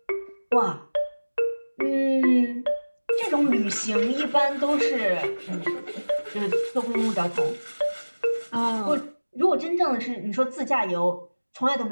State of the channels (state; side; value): inverted; both; correlation -1.00